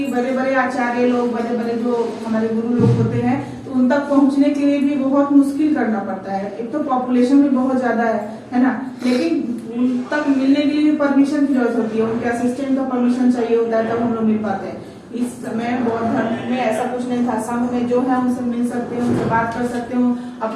बड़े बड़े आचार्य लोग, बड़े बड़े जो हमारे गुरु लोग होते हैं, तो उन तक पहुंचने के लिए भी बहुत मुश्किल करना पड़ता है। एक तो पॉपुलेशन भी बहुत ज्यादा है ना, लेकिन उन तक मिलने के लिए भी परमिशन की जरूरत होती है, उनके असिस्टेंट का परमिशन चाहिए होता है, तब हम लोग मिल पाते हैं। इस समय बौद्ध धर्म में ऐसा कुछ नहीं था, संघ में जो है उनसे मिल सकते हैं, उनसे बात कर सकते हो,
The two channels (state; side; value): identical; both; correlation 1.00